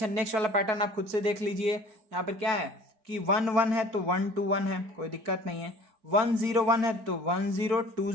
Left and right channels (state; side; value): late; left; 4.5 ms